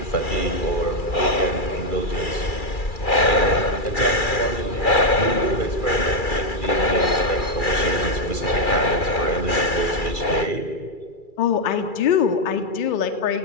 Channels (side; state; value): right; late; 2.4 ms